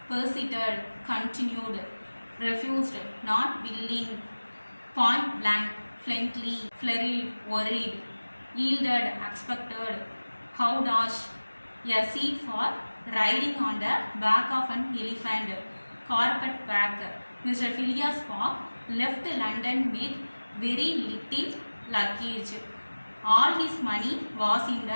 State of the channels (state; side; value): inverted; both; correlation -1.00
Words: persevered, continued, refused, not willing, point blank, fluently, flurried, worried, yielded, expected, howdash, a seat for riding on the back of an elephant, carpet bag. Mr. Phileas Fogg left London with very little luggage. All his money was in